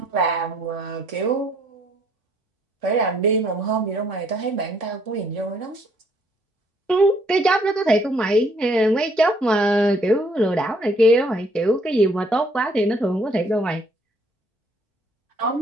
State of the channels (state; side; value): normal; both; correlation 0.65